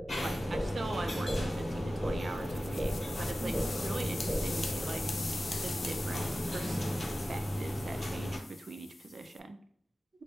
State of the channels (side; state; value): both; normal; correlation 0.95